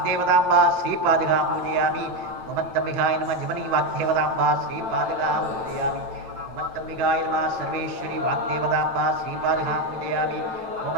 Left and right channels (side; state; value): left; late; 9.0 ms